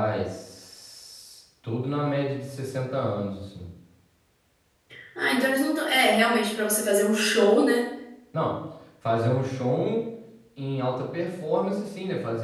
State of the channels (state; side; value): identical; both; correlation 1.00